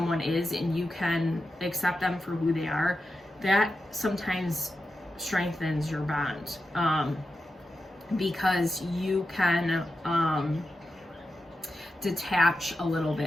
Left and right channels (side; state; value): both; normal; correlation 0.90